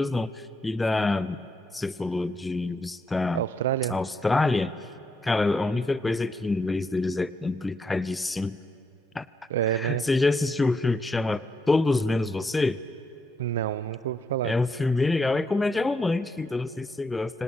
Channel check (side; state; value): both; normal; correlation 0.79